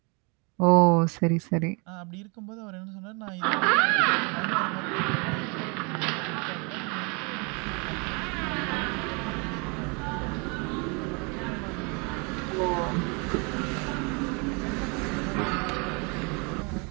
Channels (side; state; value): left; quieter; 31.7 dB